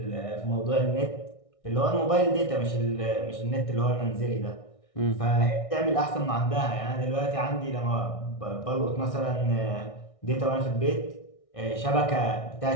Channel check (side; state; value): right; late; 1.6 ms